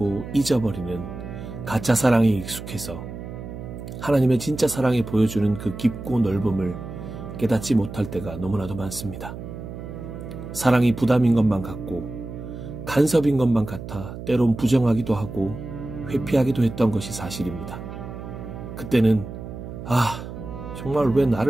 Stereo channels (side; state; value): right; noise; hum, 10 dB below the sound